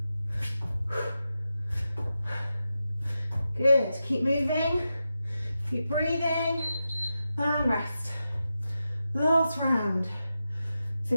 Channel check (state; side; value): inverted; both; correlation -0.90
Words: Good. Keep moving. Keep breathing. And rest. Last round. So